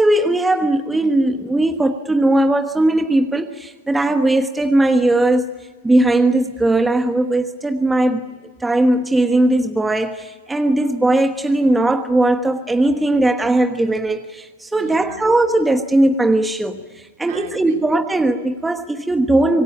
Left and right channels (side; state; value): both; normal; correlation 0.87